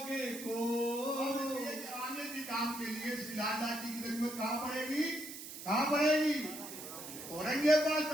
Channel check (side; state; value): right; noise; hiss, 11 dB below the sound